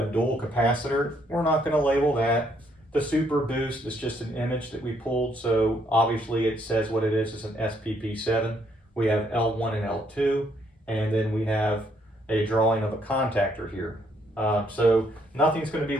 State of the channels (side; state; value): both; normal; correlation 0.70